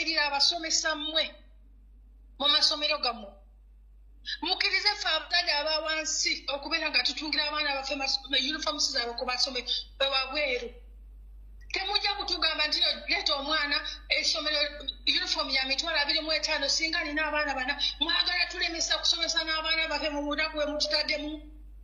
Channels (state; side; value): identical; both; correlation 1.00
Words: abasomesa mmwe mu masomero gammwe mukkirize ffe abazadde aba wansi okubeera nga tutungira abaana baffe uniforms zaabwe ku masomero wabweru Temujja kutugamba nti leeta omwana essomero uniform ya mitwalo 25 singa nina abaana bana mwagala tulemesa kusomesa n'abaana bafe mu bunaku bwe mututaddemu